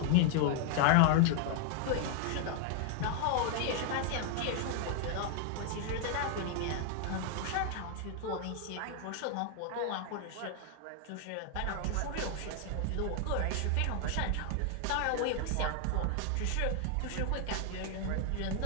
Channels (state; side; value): different; both; correlation 0.00